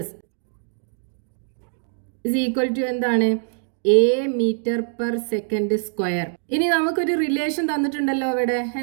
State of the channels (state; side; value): silent; left; digital silence